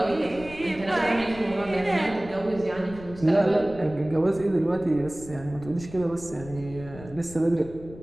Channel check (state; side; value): noise; left; rumble, 16 dB below the sound